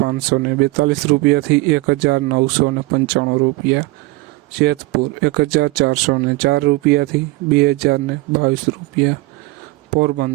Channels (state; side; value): quieter; left; 21.3 dB